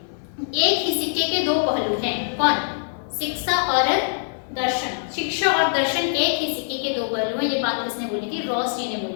एक ही सिक्के के दो पहलू हैं। कौन? शिक्षा और दर्शन। शिक्षा और दर्शन एक ही सिक्के के दो पहलू हैं। ये बात किसने बोली थी? रॉस जी ने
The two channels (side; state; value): right; silent; digital silence